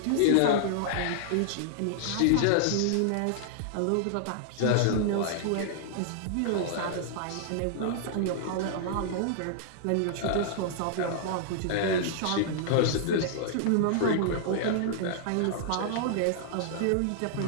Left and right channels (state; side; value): different; both; correlation -0.01